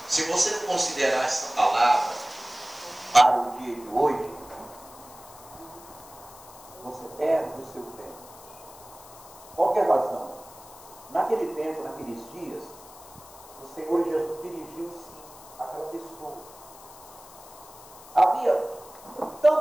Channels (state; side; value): noise; left; hiss, 20 dB below the sound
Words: Se você não considerar essa palavra para o dia de hoje, você perde o seu tempo. Qual que é a razão? Naquele tempo, naqueles dias, o Senhor Jesus dirigiu-se àquela pessoa. Havia